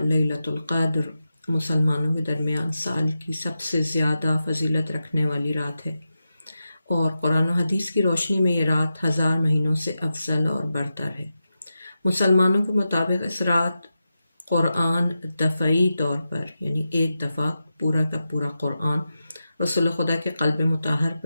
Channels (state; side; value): inverted; both; correlation -0.91